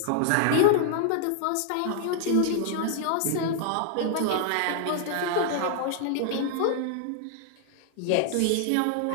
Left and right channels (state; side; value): different; both; correlation -0.01